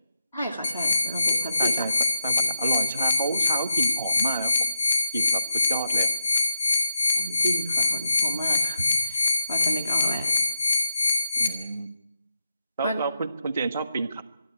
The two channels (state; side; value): inverted; both; correlation -0.86